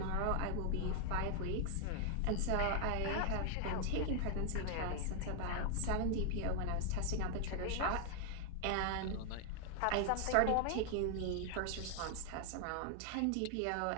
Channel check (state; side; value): different; both; correlation 0.00